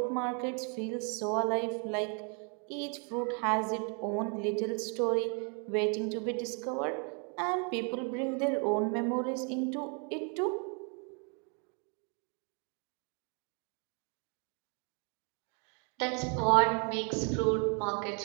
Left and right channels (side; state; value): left; quieter; 36.9 dB